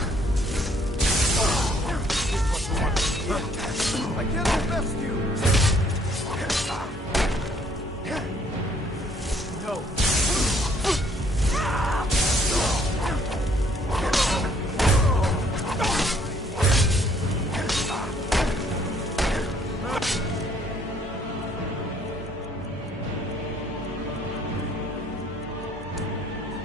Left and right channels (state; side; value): normal; both; correlation 0.63